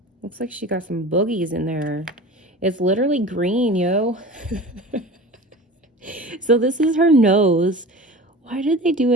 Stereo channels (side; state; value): both; normal; correlation 0.36